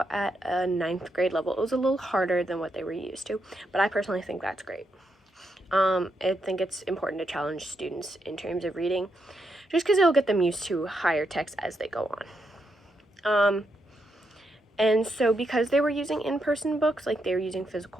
at a 9th grade level. It was a little harder than what they were used to, but I personally think that's great. I think it's important to challenge students in terms of reading, just because it'll get them used to higher text as they go on. And so because they were using in-person books, like they were using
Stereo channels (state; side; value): normal; both; correlation 0.81